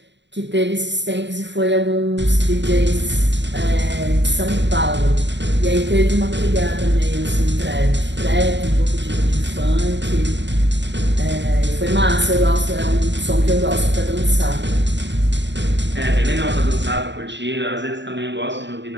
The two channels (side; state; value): left; late; 0.52 ms